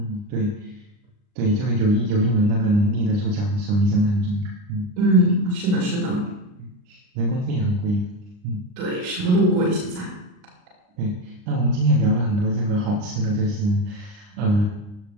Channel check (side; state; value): left; late; 39 ms